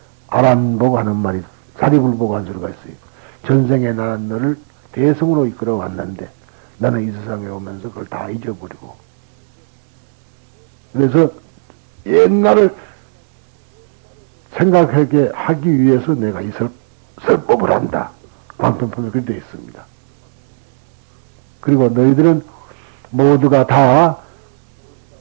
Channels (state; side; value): silent; left; digital silence